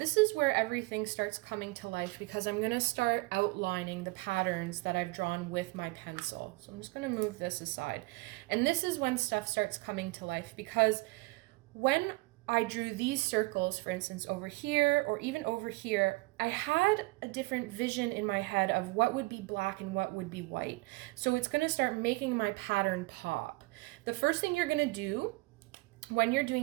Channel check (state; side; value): quieter; left; 23.8 dB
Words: is where everything starts coming to life because I'm going to start outlining the patterns that I've drawn with my pencil. So I'm just going to move this aside. And this is when stuff starts coming to life, because when I drew these circles, for instance, over here or even over here, I had a different vision in my head of what would be black and what would be white. So it's going to start making my pattern pop. The first thing you're going to do when you're